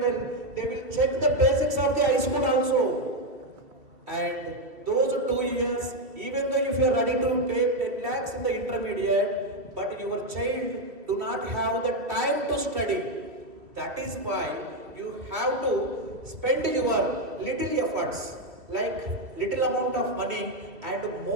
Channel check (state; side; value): late; left; 2.5 ms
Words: they will check the basics of the high school also. And those 2 years, even though if you are ready to pay 10 lakhs in the intermediate, but your child do not have the time to study. That is why you have to spend your little efforts, like little amount of money and